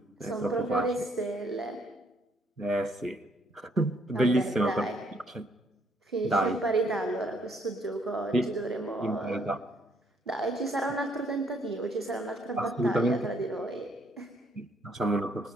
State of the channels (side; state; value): both; normal; correlation 0.68